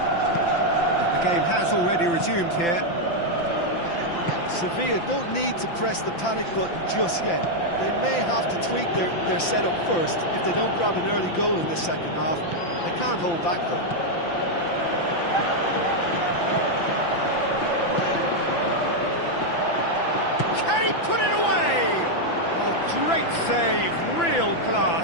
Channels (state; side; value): late; right; 5.9 ms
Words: The game has already resumed here. Sevilla don't need to press the panic button just yet. They may have to tweak their setup first if they don't grab an early goal in the second half. They can't hold back though. Can he put it away? Oh, great save, real